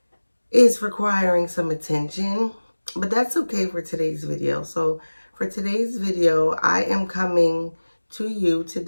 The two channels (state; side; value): inverted; both; correlation -1.00